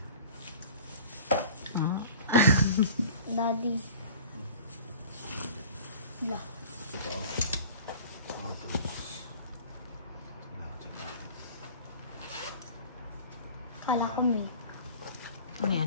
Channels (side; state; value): both; inverted; correlation -0.43